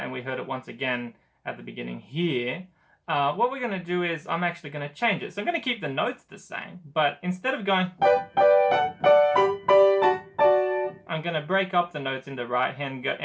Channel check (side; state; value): both; identical; correlation 1.00